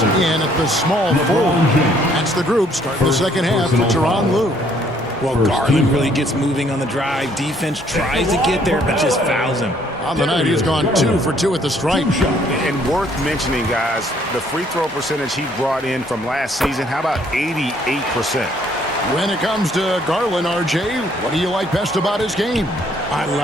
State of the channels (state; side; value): normal; both; correlation 0.64